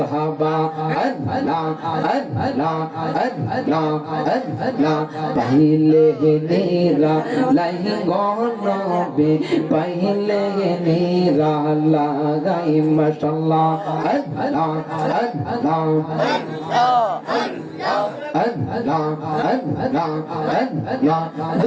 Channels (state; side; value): identical; both; correlation 1.00